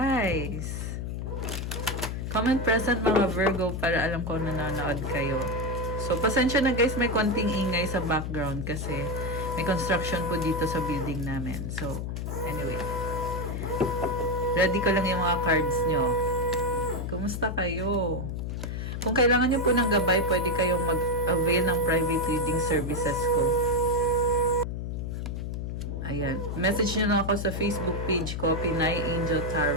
Comment present mga Virgo para alam ko na nanonood kayo. So, pasensya na guys, may konting ingay sa background kasi may construction po dito sa building namin. So, anyway. Ready ko lang yung mga cards nyo. Kumusta kayo? Kung kailangan nyo po ng gabay, pwede kayong mag-avail ng private reading services ko. Ayan. Message nyo lang ako sa Facebook page ko, Pinay Angel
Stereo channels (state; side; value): noise; left; hum, 4 dB below the sound